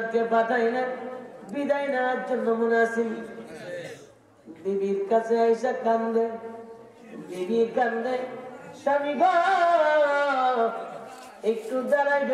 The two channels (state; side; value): identical; both; correlation 1.00